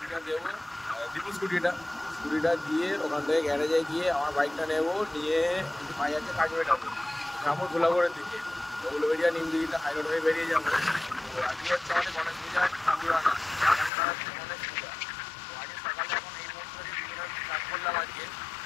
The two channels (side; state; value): right; drops out; at 13.9 s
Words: দেবো, দীপু স্কুটিটা দিয়ে ওখান থেকে গ্যারেজে গিয়ে আমার বাইকটা নেবো, নিয়ে একটু পাই আছে কাজবেটাতে যাবো ধুলাগড়ের দিকে। তো উলুবেড়িয়া নিমদিঘিটা হাই রোড হয়ে বেরিয়ে যাবো। তো আজকে হচ্ছে আমাদের গণেশ পূজার ঠাকুরানা, গণেশ পূজা। তো আজকে সকালে এখন এই মুহূর্তে স্টার্ট করলাম আজকে।